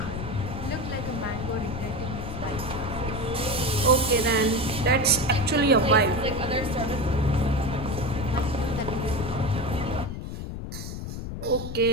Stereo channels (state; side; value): noise; left; rumble, 6 dB below the sound